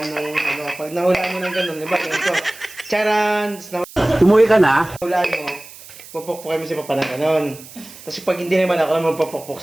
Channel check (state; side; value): noise; right; hiss, 18 dB below the sound